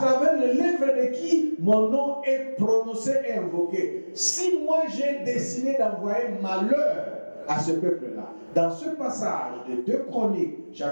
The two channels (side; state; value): both; inverted; correlation -1.00